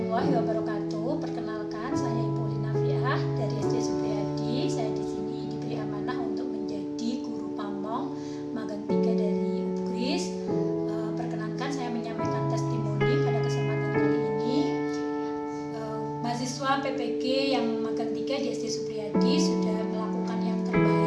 wabarakatuh. Perkenalkan, saya Ibu Linafiah dari SD Supriyadi. Saya di sini diberi amanah untuk menjadi guru pamong magang 3 dari UPGRIS. Perkenankan saya menyampaikan testimoni pada kesempatan kali ini. Mahasiswa PPG yang magang 3 di SD Supriyadi sudah melakukan yang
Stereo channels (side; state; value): both; identical; correlation 1.00